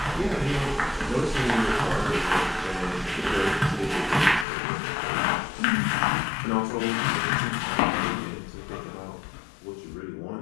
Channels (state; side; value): drops out; right; at 4.5 s